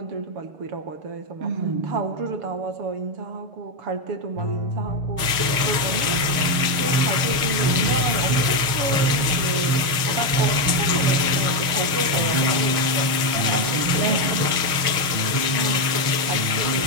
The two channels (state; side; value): late; left; 6.5 ms